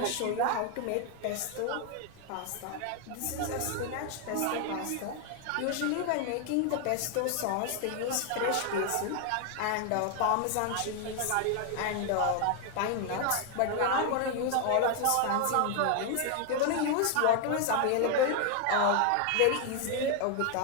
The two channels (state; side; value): different; both; correlation 0.00